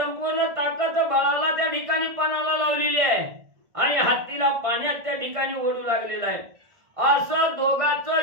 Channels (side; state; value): left; late; 1.5 ms